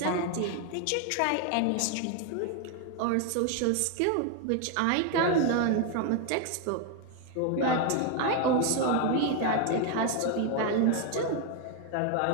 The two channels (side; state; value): both; different; correlation 0.01